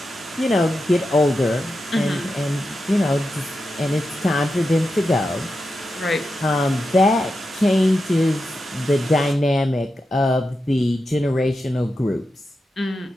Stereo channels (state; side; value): normal; both; correlation 0.89